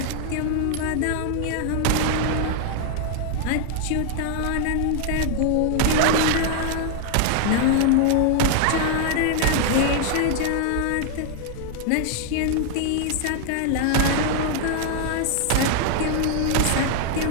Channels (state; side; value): different; both; correlation 0.00